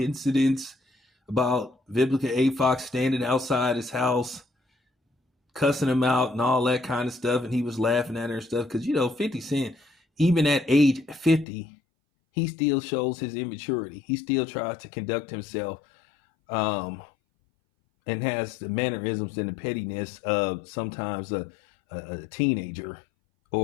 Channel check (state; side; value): drops out; right; at 11.5 s